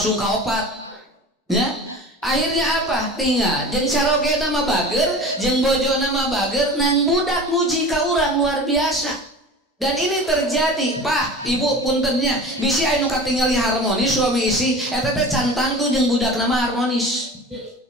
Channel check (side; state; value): both; normal; correlation 0.36